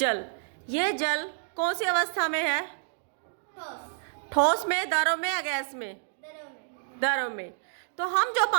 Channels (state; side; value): silent; left; digital silence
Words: ये जल कौन सी अवस्था में है? ठोस में, द्रव में या गैस में? द्रव में। तो हम जो